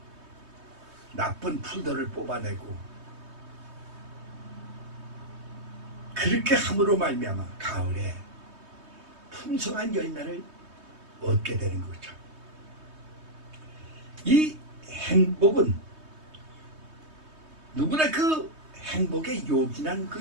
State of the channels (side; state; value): left; late; 3.2 ms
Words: 나쁜 풀들을 뽑아내고, 그렇게 함으로 말미암아 가을에 풍성한 열매를 얻게 되는 거죠. 이 행복은 누구나 그 행복에 요긴한 그